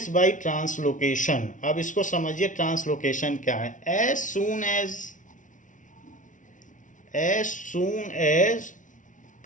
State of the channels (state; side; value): late; right; 0.37 ms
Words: बाय ट्रांसलोकेशन. अब इसको समझिए ट्रांसलोकेशन क्या है. एज सून एज